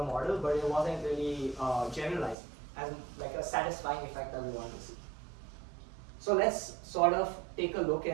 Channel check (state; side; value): drops out; left; at 2.4 s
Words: model, but it wasn't really generalized as like a satisfying effect that we wanted to see. So let's sort of take a look